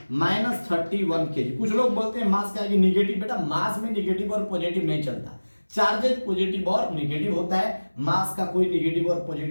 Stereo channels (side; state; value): both; inverted; correlation -1.00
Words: -31 kg। कुछ लोग बोलते हैं मास क्या है, निगेटिव, बेटा मास में निगेटिव और पॉजिटिव नहीं चलता, चार्जेज पॉजिटिव और नेगेटिव होता है, मास का कोई नेगेटिव और